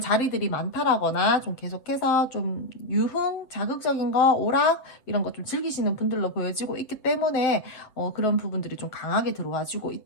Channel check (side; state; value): right; late; 7.9 ms